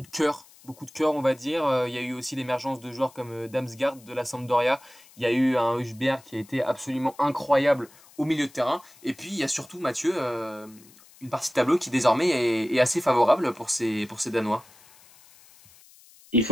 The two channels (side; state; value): left; noise; hiss, 25 dB below the sound